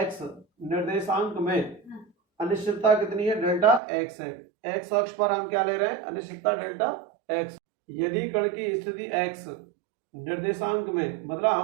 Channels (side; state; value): left; drops out; at 3.8 s